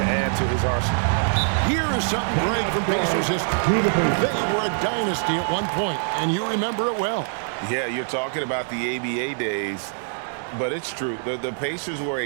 add to his arsenal. Here is something great from Pacers history. They were a dynasty at one point, and you remember it well. Yeah, you're talking about the ABA days, but it's true. The Pacers were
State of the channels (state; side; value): silent; left; digital silence